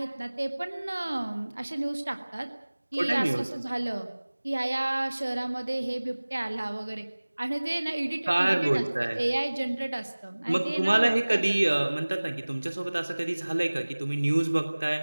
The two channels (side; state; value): both; inverted; correlation -1.00